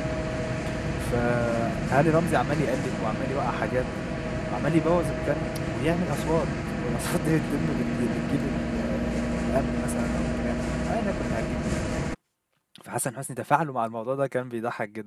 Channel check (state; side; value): identical; both; correlation 1.00